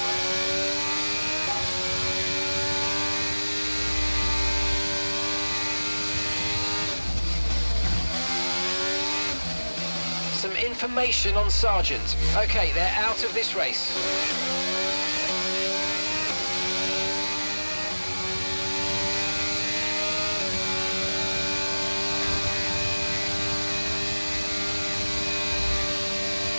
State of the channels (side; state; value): both; inverted; correlation -1.00